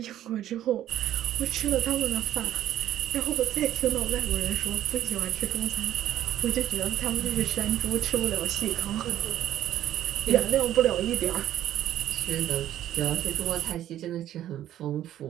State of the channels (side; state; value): left; quieter; 12.3 dB